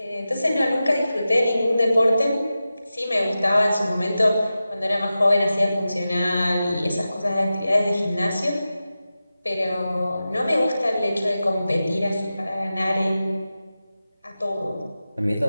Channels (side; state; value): both; inverted; correlation -0.93